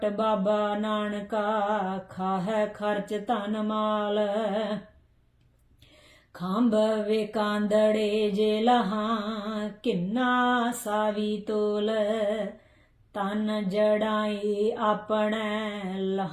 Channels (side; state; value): both; identical; correlation 1.00